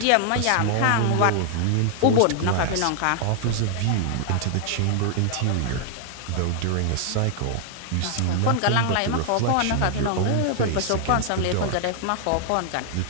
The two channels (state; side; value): different; both; correlation 0.00